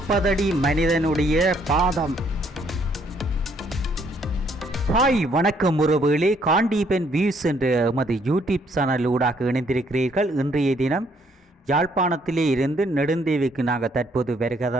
அடி மனிதனுடைய பாதம். ஹாய், வணக்கம் உறவுகளே. காண்டீபன் வியூஸ் என்ற எமது யூடியூப் சேனல் ஊடாக இணைந்திருக்கிறீர்கள். இன்றைய தினம் யாழ்ப்பாணத்திலே இருந்து நெடுந்தீவுக்கு நாங்கள் தற்போது வருகை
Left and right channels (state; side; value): normal; both; correlation 0.67